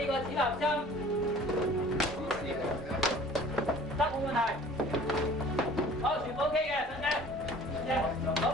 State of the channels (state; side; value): normal; both; correlation 0.48